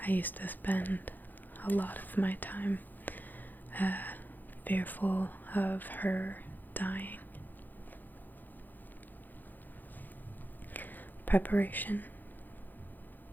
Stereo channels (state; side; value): late; right; 0.086 ms